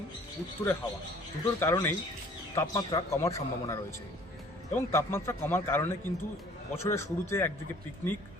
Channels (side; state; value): both; normal; correlation 0.54